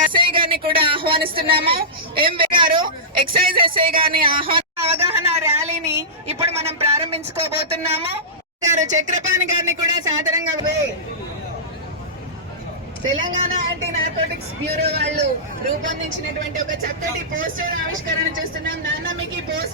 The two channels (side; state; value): both; normal; correlation -0.18